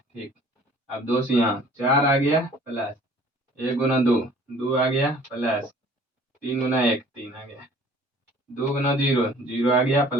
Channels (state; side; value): normal; both; correlation 0.52